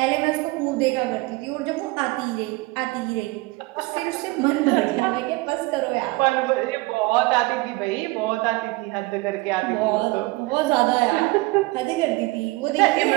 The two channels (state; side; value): quieter; left; 22.9 dB